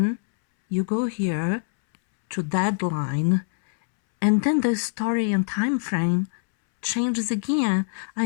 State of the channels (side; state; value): right; silent; 63 dB below the other